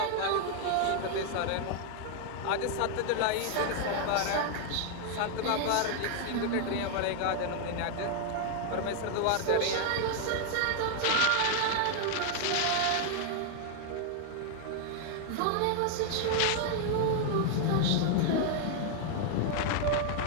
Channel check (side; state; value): both; different; correlation 0.00